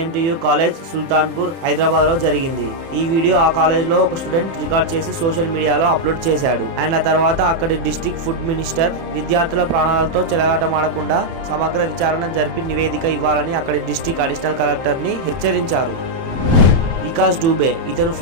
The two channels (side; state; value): left; late; 30 ms